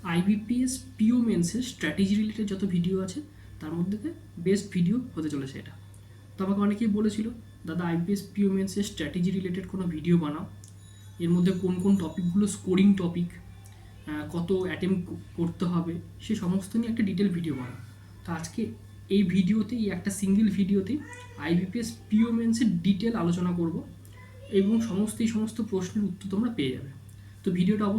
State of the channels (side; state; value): both; identical; correlation 1.00